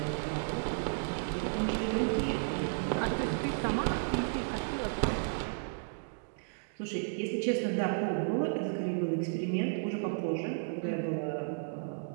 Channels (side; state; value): left; silent; digital silence